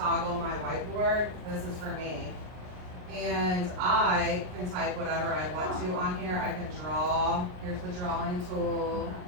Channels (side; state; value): left; late; 39 ms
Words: my whiteboard. This is for me. And I can type whatever I want to on here. I can draw. Here's the drawing tool.